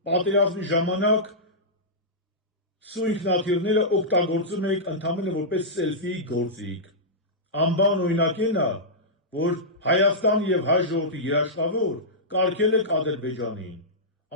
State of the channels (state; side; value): normal; both; correlation -0.13